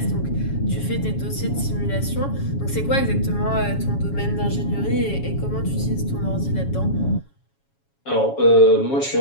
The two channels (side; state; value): right; late; 7.2 ms